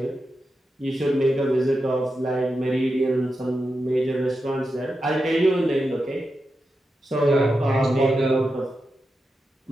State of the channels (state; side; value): normal; both; correlation 0.89